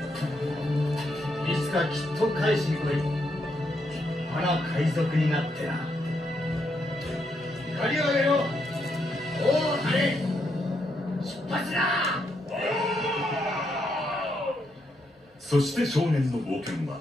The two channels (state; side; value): normal; both; correlation 0.79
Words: つかきっと返しに来い。立派な海賊になってな。光を上げろ。おお、あれ出発だ。そして少年の冒険は